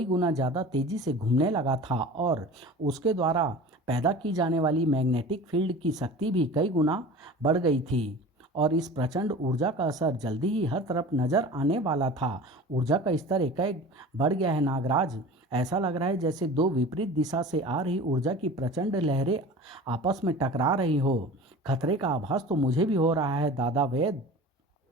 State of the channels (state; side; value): normal; both; correlation 0.38